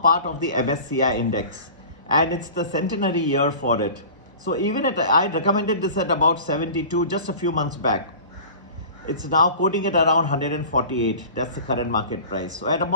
of the MSCI index and it's the centenary year for it. So even I recommended this at about 72 just a few months back. It's now quoting at around 148. That's the current market price. So at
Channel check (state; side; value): inverted; both; correlation -0.40